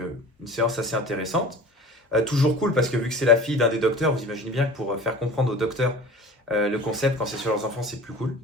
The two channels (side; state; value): both; normal; correlation 0.40